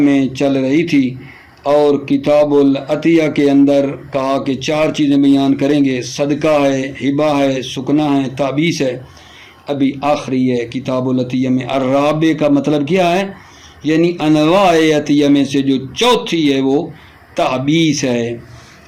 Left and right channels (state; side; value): identical; both; correlation 1.00